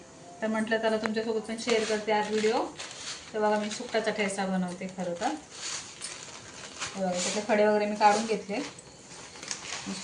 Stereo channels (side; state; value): both; identical; correlation 1.00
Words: तर म्हटलं त्याला तुमच्यासोबत पण शेअर करते आज व्हिडिओ. तर बघा मी सुकटाचा ठेचा बनवते. खरं तर बघा त्याचे खडे वगैरे मी काढून घेतले.